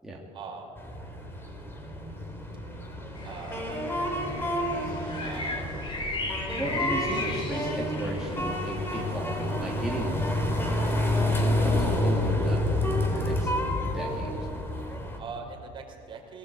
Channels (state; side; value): normal; both; correlation 0.60